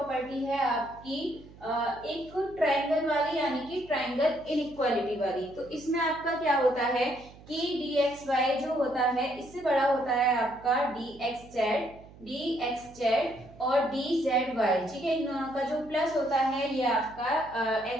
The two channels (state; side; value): noise; right; hum, 21 dB below the sound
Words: है आपकी एक ट्रायंगल वाली, यानी कि ट्रायंगल इनइक्वालिटी वाली। तो इसमें आपका क्या होता है कि dxy जो होता है इससे बड़ा होता है आपका dxz और dzy। ठीक है, इन दोनों का जो प्लस होता है ये आपका